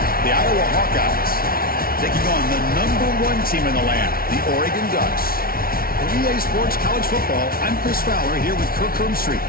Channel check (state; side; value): late; right; 0.43 ms